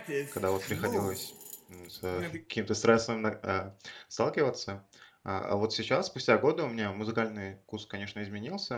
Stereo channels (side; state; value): both; identical; correlation 1.00